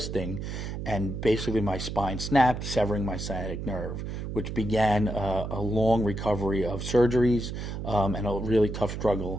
and basically my spine snapped, severing my sciatic nerve, which began a long recovery of surgeries and a really tough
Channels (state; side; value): noise; right; hum, 6 dB below the sound